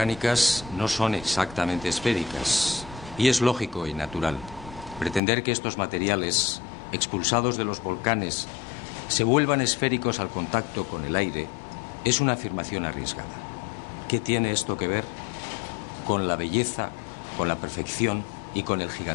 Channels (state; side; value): drops out; right; at 5.2 s